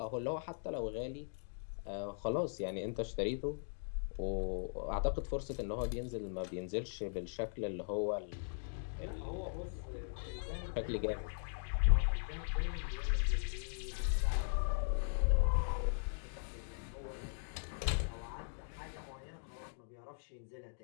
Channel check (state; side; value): silent; right; digital silence